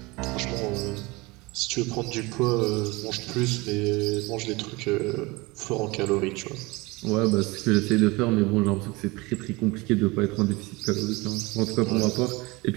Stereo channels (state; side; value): quieter; left; 23.7 dB